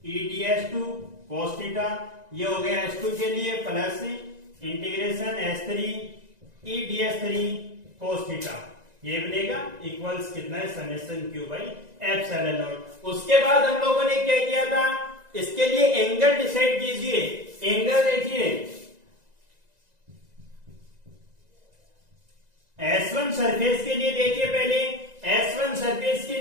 EDS2 cos थीटा, ये हो गया S2 के लिए, plus integration S3 EDS3 cos theta, ये बनेगा इक्वल्स कितना है, summation Q by epsilon not. उसके बाद हम लोगों ने क्या किया था, इसके लिए एंगल डिसाइड कीजिए। एंगल देखिए, S1 सरफेस के लिए देखिए, पहले S1 सरफेस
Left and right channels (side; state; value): left; late; 1.9 ms